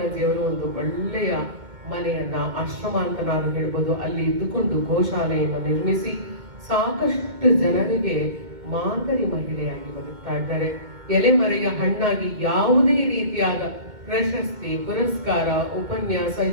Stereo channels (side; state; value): left; late; 2.2 ms